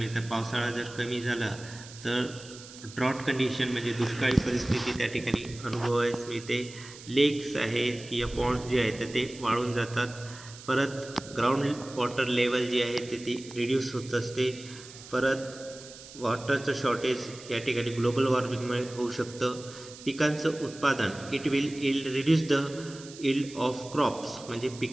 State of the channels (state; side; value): noise; right; hiss, 17 dB below the sound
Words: पावसाळा जर कमी झाला तर ड्रॉट कंडिशन म्हणजे दुष्काळी परिस्थिती त्या ठिकाणी अनुभवायला मिळते. लेक्स आहेत किंवा पॉन्ड्स जे आहेत तर ते वाळून जातात. परत ग्राउंड वॉटर लेवल जी आहे ते ती रिड्यूस होत असते. परत वॉटरचं शॉर्टेज या ठिकाणी ग्लोबल वॉर्मिंगमुळे होऊ शकतं. पिकांचं उत्पादन it will reduce the yield of crops म्हणजे